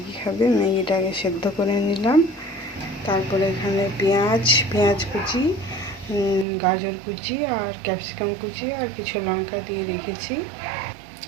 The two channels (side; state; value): left; drops out; at 6.5 s